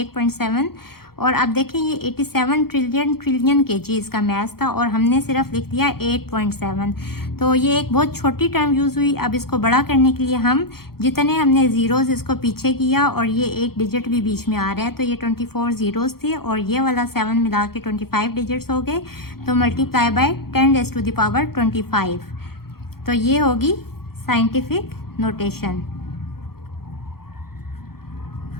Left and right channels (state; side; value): late; right; 0.94 ms